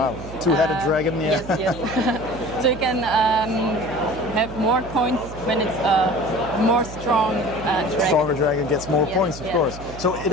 wow, two-headed dragon. Yeah. Yes, yes. So you can have more points when it's a more strong dragon. Stronger dragon gets more points, of course. So it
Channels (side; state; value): right; noise; hum, 13 dB below the sound